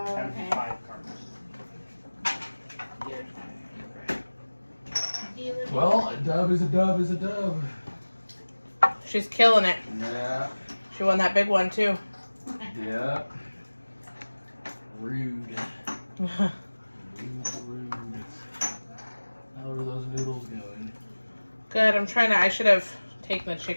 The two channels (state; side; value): inverted; both; correlation -1.00